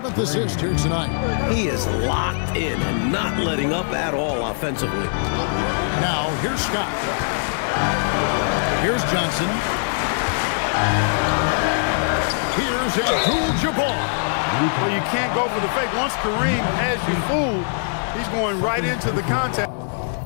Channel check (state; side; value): silent; right; 64 dB below the other